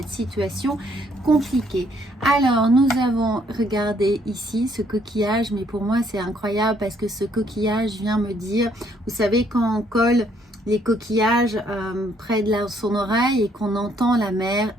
situation compliquée. Alors nous avons regardé ici ce coquillage, mais pour moi c'est incroyable parce que ce coquillage vient me dire, vous savez quand on colle les coquillages près de son oreille et qu'on entend la mer,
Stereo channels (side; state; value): both; normal; correlation 0.68